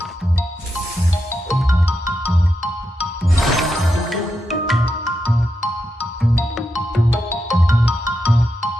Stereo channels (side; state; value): both; normal; correlation 0.86